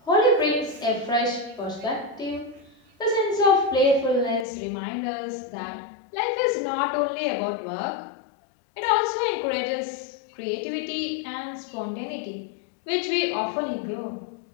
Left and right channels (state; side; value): drops out; right; at 4.5 s